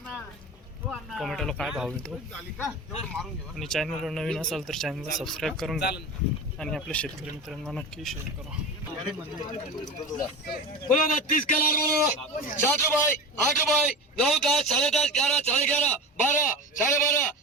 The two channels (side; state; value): both; normal; correlation 0.28